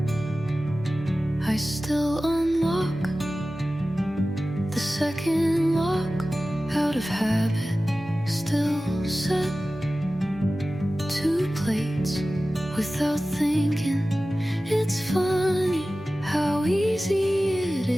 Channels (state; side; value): normal; both; correlation 0.96